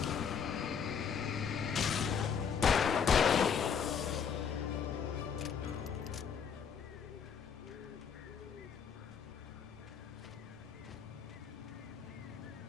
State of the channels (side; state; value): right; quieter; 7.0 dB